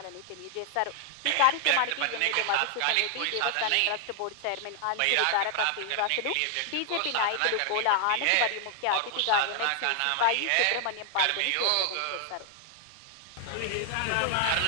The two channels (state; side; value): different; both; correlation 0.00